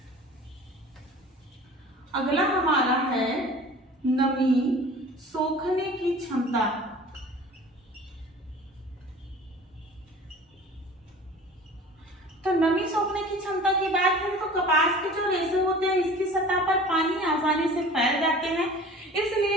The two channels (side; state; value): both; normal; correlation 0.43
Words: अगला हमारा है नमी सोखने की क्षमता। तो नमी सोखने की क्षमता की बात करें तो कपास के जो रेशे होते हैं इसकी सतह पर पानी आसानी से फैल जाते हैं,